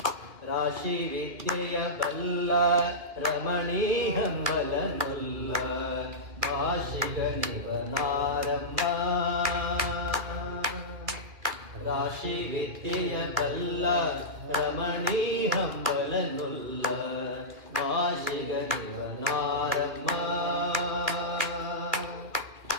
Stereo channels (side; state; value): left; late; 2.1 ms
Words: ರಾಶಿ ವಿದ್ಯೆಯ ಬಲ್ಲ ರಮಣೀ ಹಂಬಲನುಲ್ಲ ಭಾಷಿಗ ನಿವನಾರಮ್ಮ ರಾಶಿ ವಿದ್ಯೆಯ ಬಲ್ಲ ರಮಣೀ ಹಂಬಲನುಲ್ಲ ಭಾಷಿಗ ನಿವನಾರಮ್ಮ